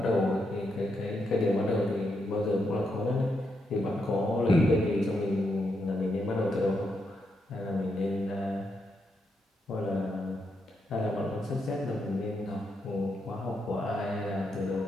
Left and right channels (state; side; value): normal; both; correlation 0.81